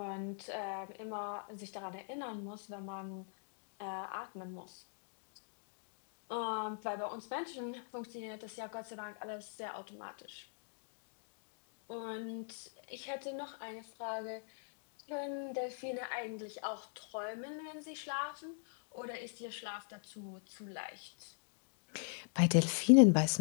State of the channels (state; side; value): silent; right; digital silence